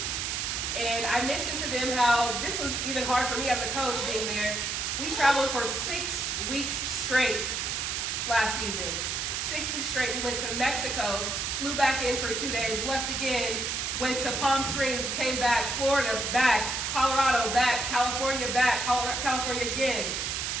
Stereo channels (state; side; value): noise; right; hiss, 1 dB below the sound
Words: And I mentioned to them how this was even hard for me as a coach being there. We traveled for 6 weeks straight last season. 6 weeks straight. We went to Mexico, flew back in for 2 days, left again, went to Palm Springs, came back, Florida, back, Colorado, back, California, California again.